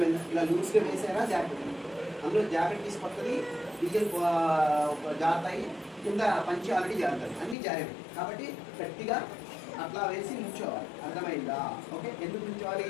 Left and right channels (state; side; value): drops out; right; at 7.6 s